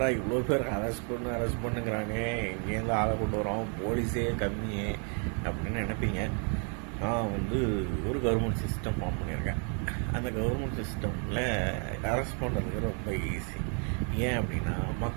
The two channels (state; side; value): quieter; left; 39.5 dB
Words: இவ்வளோ பேர் அரெஸ்ட் பண்ணுங்கிறாங்க, எங்கேருந்து ஆளை கொண்டு வரோம், போலீஸே கம்மியே அப்படின்னு நினைப்பீங்க. நான் ஒரு கவர்மெண்ட் சிஸ்டம் ஃபார்ம் பண்ணியிருக்கேன். அந்த கவர்மெண்ட் சிஸ்டமில் அரெஸ்ட் பண்ணுறதுக்கு ரொம்ப ஈஸி. ஏன் அப்படின்னா